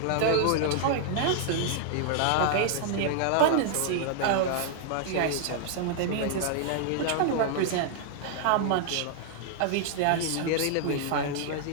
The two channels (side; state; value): both; different; correlation 0.00